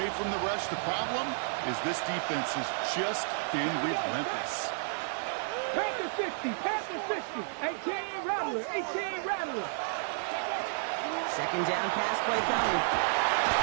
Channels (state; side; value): silent; left; digital silence